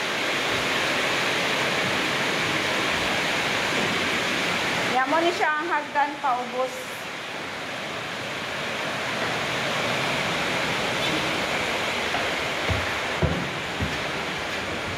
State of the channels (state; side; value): identical; both; correlation 1.00